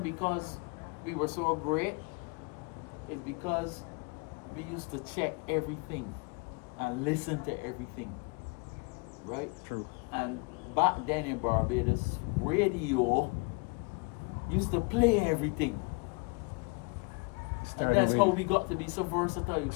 because we were so great. It's because we used to check everything and listen to everything, right? True. And back then in Barbados, radio used to play everything. And that's how we got to be so versatile.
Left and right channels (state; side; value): quieter; right; 30.3 dB